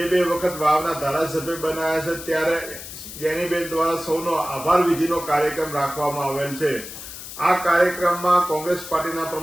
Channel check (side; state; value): left; noise; hiss, 12 dB below the sound